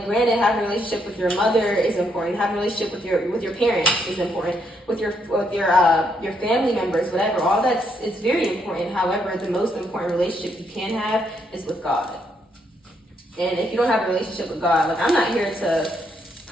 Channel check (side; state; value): both; normal; correlation 0.75